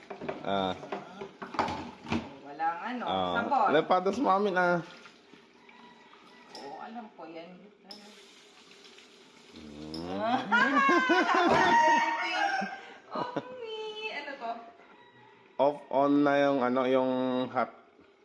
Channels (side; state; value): both; identical; correlation 1.00